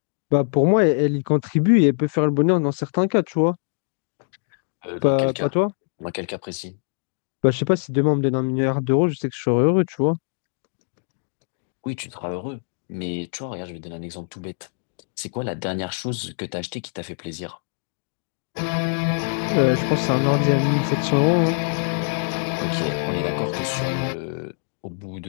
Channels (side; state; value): right; silent; digital silence